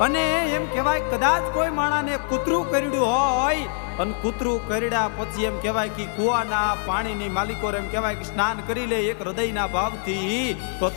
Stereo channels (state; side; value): silent; right; 63 dB below the other